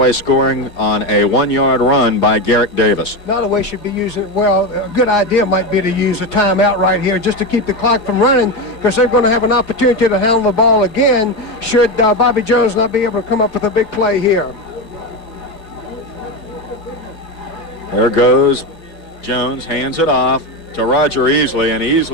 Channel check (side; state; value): right; late; 4.9 ms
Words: scoring on a 1-yard run by Garrick Davis. Nottoway should be using, well, a good idea might be to use a timeout right here just to keep the clock from running, because they're going to have an opportunity to handle the ball again should Bobby Jones not be able to come up with a big play here. There goes Jones, hands it off to Roger Easley, and